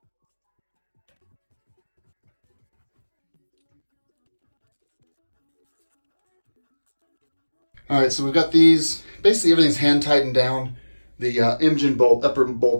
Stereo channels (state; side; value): inverted; both; correlation -1.00